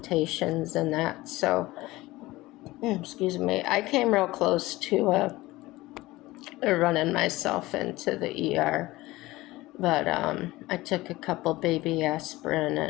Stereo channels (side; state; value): right; quieter; 19.0 dB